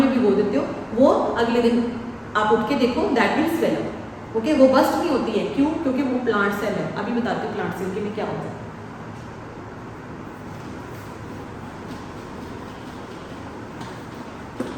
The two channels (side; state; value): both; identical; correlation 1.00